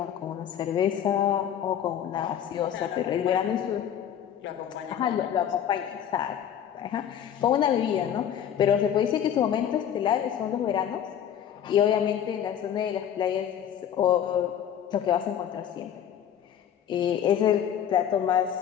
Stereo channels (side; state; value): right; quieter; 9.6 dB